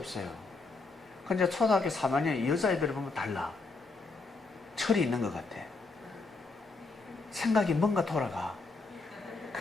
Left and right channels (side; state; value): right; quieter; 3.9 dB